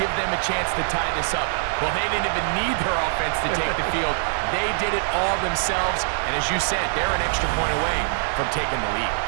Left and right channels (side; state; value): left; silent; 63 dB below the other